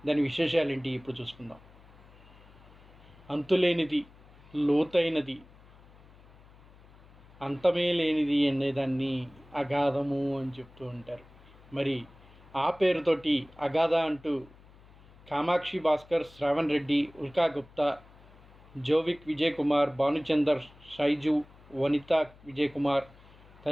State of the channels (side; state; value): left; noise; hum, 24 dB below the sound